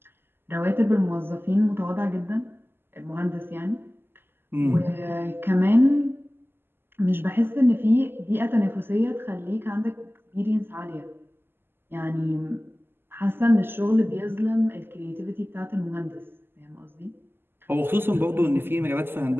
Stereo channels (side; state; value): left; late; 0.11 ms